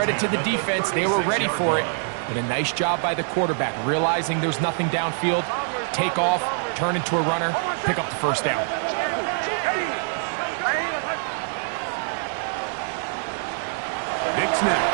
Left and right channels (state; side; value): silent; left; 60 dB below the other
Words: to the defense. They were ready for it. But a nice job by the quarterback, realizing there's nothing downfield. Take off, turn into a runner, pick up the first down. Nix now